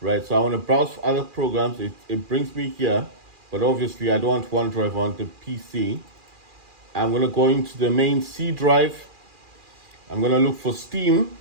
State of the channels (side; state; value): left; late; 2.4 ms